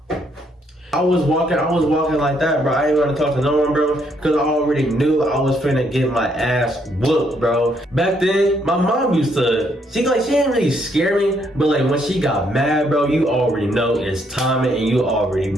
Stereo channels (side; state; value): both; normal; correlation 0.72